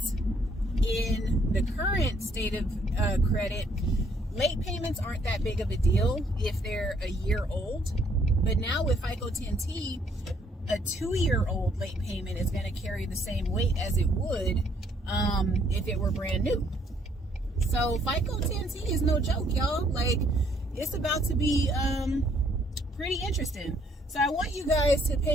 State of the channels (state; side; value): normal; both; correlation 0.67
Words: in the current state of credit, late payments aren't that big of a deal if they're a year old. But now with FICO 10T, a 2-year-old late payment is going to carry the same weight as it would if it were brand new. So FICO 10T is no joke, y'all. Like, it's about to be pretty interesting. So I want you guys to